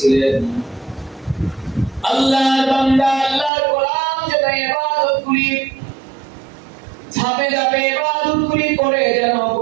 আল্লাহর বান্দা আল্লাহর গোলাম যেন ইবাদতগুলি ধাপে ধাপে ইবাদতগুলি করে যেন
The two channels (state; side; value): drops out; left; at 3.5 s